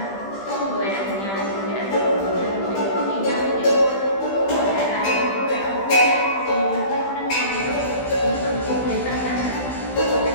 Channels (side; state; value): right; late; 15 ms